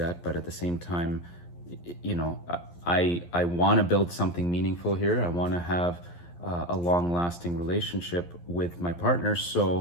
but at the same time, you know, I want to build something meaningful here. I want to have a long-lasting relationship with my partner.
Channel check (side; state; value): right; late; 11 ms